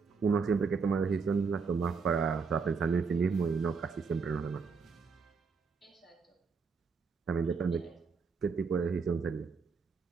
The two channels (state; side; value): quieter; left; 5.2 dB